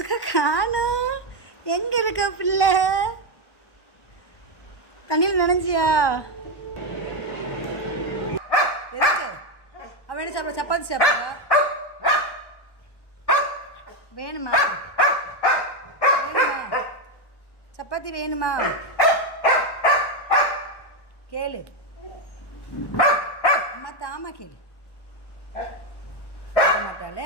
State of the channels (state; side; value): late; right; 1.1 ms